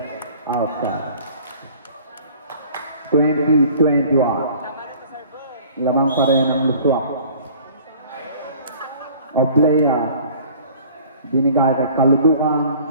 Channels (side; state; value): both; inverted; correlation -0.50